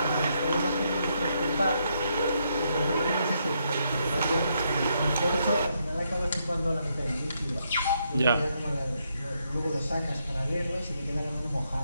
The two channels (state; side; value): inverted; both; correlation -0.77